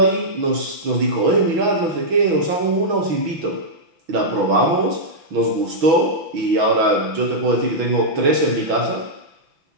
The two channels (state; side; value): late; left; 6.1 ms